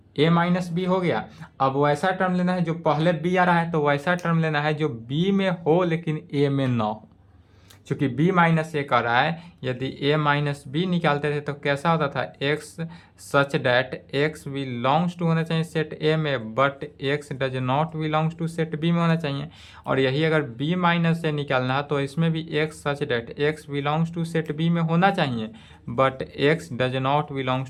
a माइनस बी हो गया। अब वैसा टर्म लेना है जो पहले b आ रहा है, तो वैसा टर्म लेना है जो b में हो लेकिन a में ना हो। चूंकि b माइनस ए कर रहा है, यदि a माइनस बी निकालते थे तो कैसा होता था, x such that x belongs to होना चाहिए सेट a में, but x does not belongs to set b में होना चाहिए। और यही अगर b माइनस ए निकालना है तो इसमें भी x such that x belongs to set b में होना चाहिए, but x does not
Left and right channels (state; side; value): identical; both; correlation 1.00